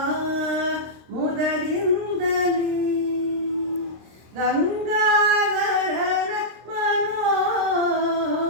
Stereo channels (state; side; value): late; left; 26 ms